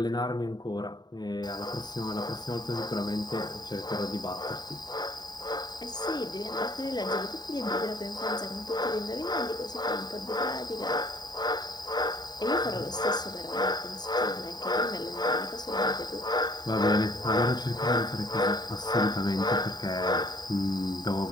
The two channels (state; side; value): late; right; 0.20 ms